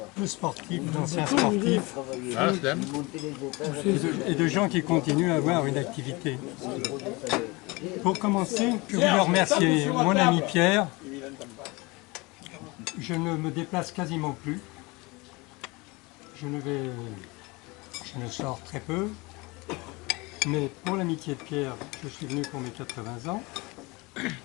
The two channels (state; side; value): quieter; right; 24.9 dB